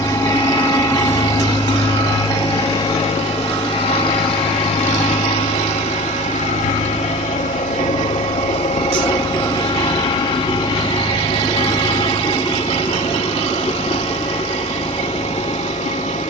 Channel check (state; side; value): normal; both; correlation 0.36